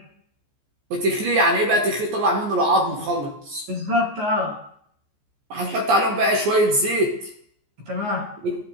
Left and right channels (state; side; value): late; left; 14 ms